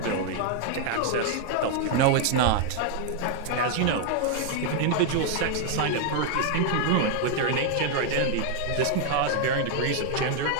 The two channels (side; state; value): both; different; correlation 0.00